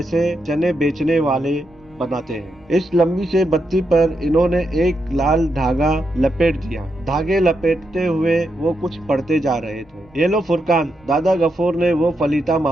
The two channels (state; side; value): normal; both; correlation 0.83